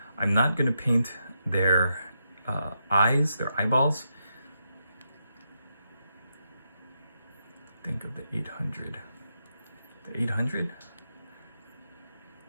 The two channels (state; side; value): inverted; both; correlation -0.83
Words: I'm not gonna paint their eyes, their eyeballs. Think of the 800. The 800?